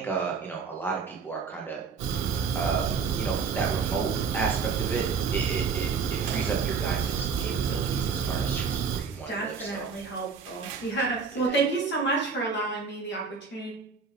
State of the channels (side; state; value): left; quieter; 5.4 dB